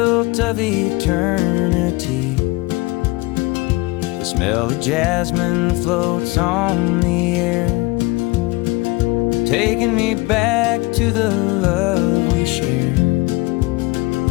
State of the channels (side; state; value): right; quieter; 22.8 dB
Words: of eternity. The smell of jasmine floats on the air, taking me back to the love we shared.